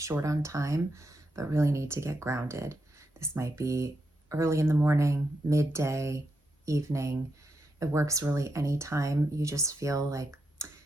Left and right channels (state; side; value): normal; both; correlation 0.84